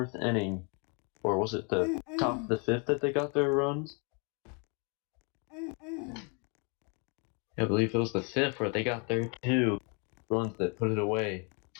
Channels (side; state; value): right; quieter; 35.7 dB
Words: inning, or was it the top of the 5th that they got their runs? I believe it was the 5th where they got their 2 runs that put it away.